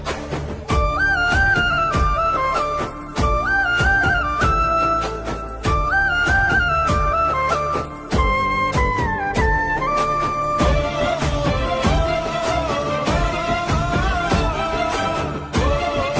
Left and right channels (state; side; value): identical; both; correlation 1.00